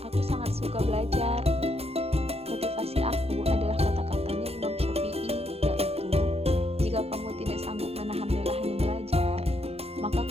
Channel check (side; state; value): left; late; 0.29 ms